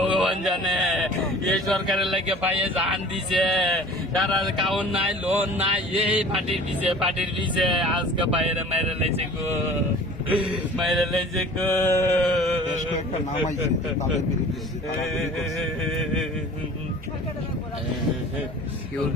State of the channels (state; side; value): normal; both; correlation 0.44